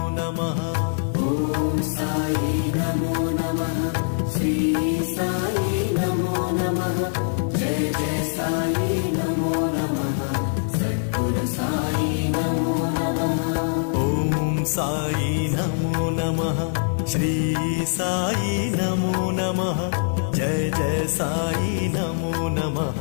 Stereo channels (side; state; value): right; silent; digital silence